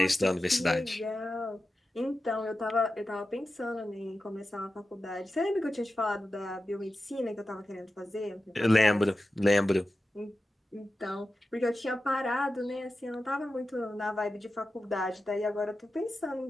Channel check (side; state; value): both; normal; correlation 0.92